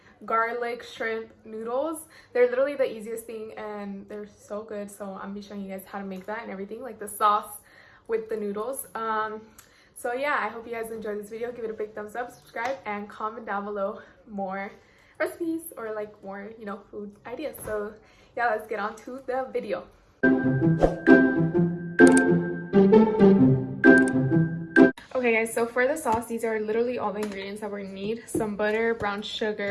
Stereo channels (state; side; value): identical; both; correlation 1.00